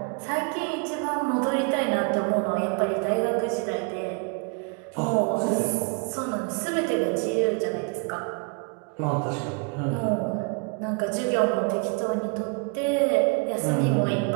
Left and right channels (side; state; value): left; quieter; 35.4 dB